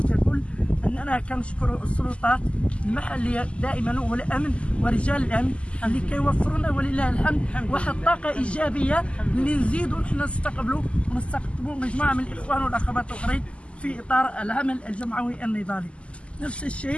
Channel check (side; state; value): right; late; 0.056 ms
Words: ككل، اننا كنشكروا السلطات المحليه دائما والامن ورجال الامن اللي كيوفروا لنا ولله الحمد واحد الطاقه ايجابيه اللي نزيدوا نحن نستقبلوا ونستقطبوا مجموعه من الاخوان والاخوات الاخرين في اطار العمل الجمعوي النضالي. نفس